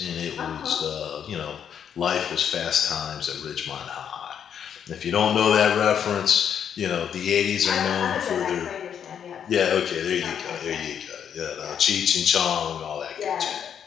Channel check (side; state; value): right; quieter; 8.4 dB